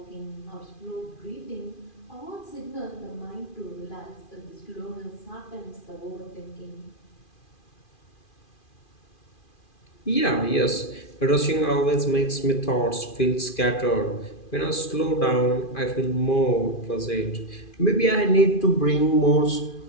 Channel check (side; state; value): right; late; 2.4 ms